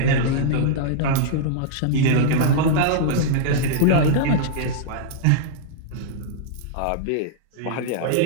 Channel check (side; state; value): both; different; correlation -0.02